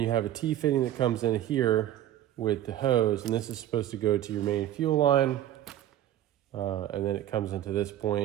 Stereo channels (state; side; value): quieter; left; 12.5 dB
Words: you have a T-fitting that comes in here with the hose, and this is supposed to go to your main fuel line, and then it comes into this